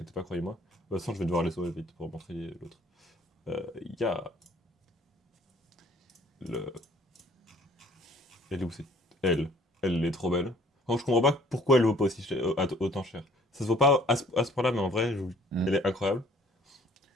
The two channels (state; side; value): normal; both; correlation 0.57